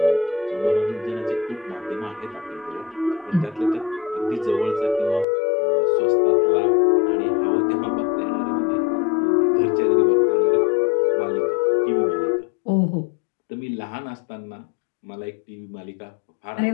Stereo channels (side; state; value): right; drops out; at 5.2 s